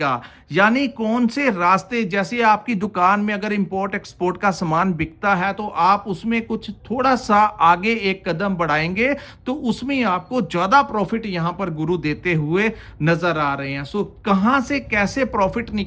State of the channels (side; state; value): both; identical; correlation 1.00